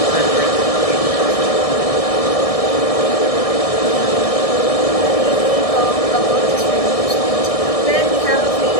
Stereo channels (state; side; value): late; right; 1.6 ms